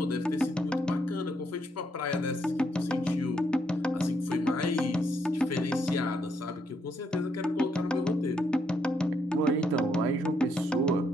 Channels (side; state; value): both; normal; correlation 0.75